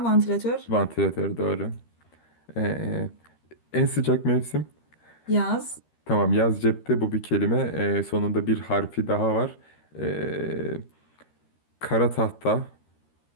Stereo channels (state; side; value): late; right; 13 ms